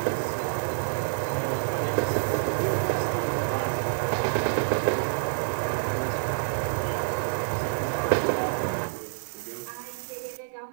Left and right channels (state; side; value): silent; left; digital silence